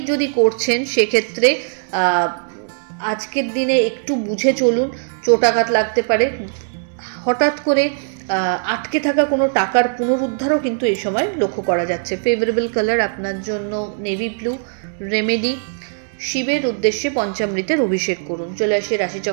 যদি করছেন সেক্ষেত্রে আজকের দিনে একটু বুঝে চলুন, চোটাঘাত লাগতে পারে। হঠাৎ করে আটকে থাকা কোনো টাকার পুনরুদ্ধারও কিন্তু এই সময় লক্ষ্য করা যাচ্ছে। ফেভারেবল কালার আপনার জন্য নেভি ব্লু। রেমেডি, শিবের উদ্দেশ্যে পঞ্চামৃতের অভিষেক করুন। চলে আসি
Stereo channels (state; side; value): silent; left; digital silence